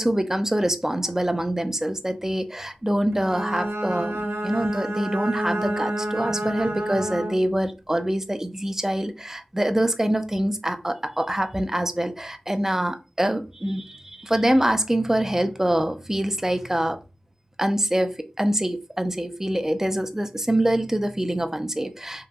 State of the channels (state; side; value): normal; both; correlation 0.95